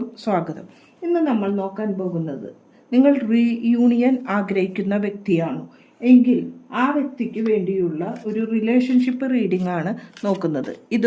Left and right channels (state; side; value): identical; both; correlation 1.00